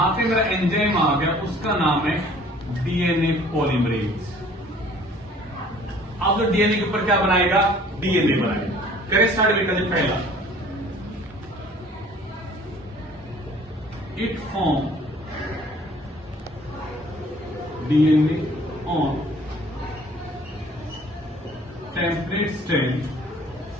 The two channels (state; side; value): normal; both; correlation 0.53